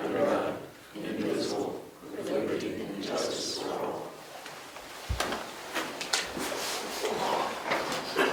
under God, indivisible, with liberty and justice for all.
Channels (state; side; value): identical; both; correlation 1.00